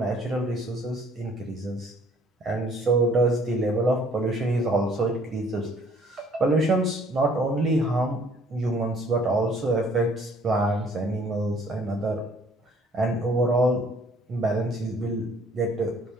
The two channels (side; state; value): both; normal; correlation 0.59